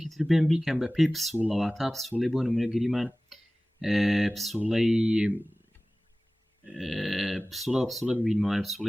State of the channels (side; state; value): both; normal; correlation 0.98